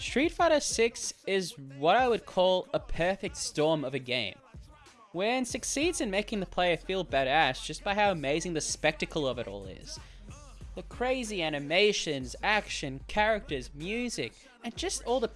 Fighter 6 is what I would call a perfect storm of a game, wherein succeeds in making the player feel badass just by how amazing the spectacle of it all is. The crazy animations, action, characters, music, and just all the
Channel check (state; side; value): identical; both; correlation 1.00